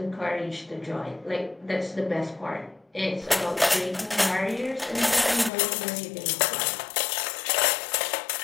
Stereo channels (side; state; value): right; drops out; at 5.5 s